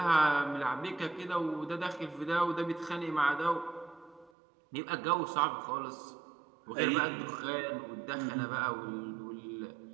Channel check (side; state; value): left; drops out; at 4.3 s